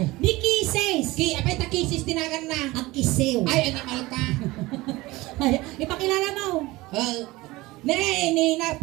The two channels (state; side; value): quieter; left; 20.2 dB